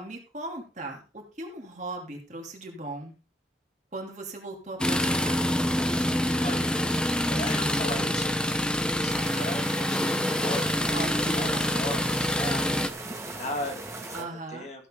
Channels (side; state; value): both; normal; correlation 0.67